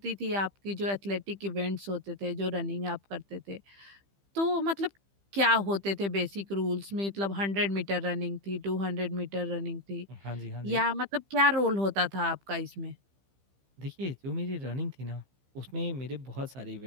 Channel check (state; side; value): late; left; 15 ms